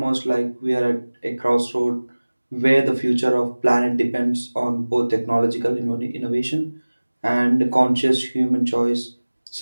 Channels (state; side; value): inverted; both; correlation -1.00